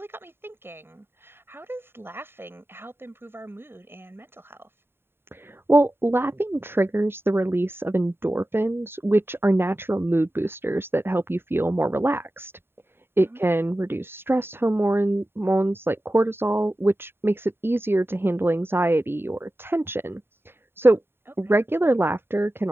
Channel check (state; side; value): late; left; 0.11 ms